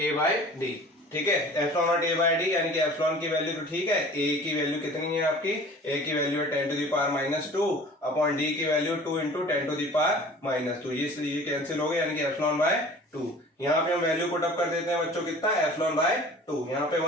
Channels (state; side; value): normal; both; correlation 0.45